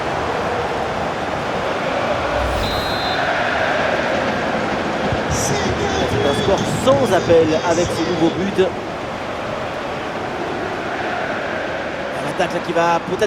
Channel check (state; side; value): identical; both; correlation 1.00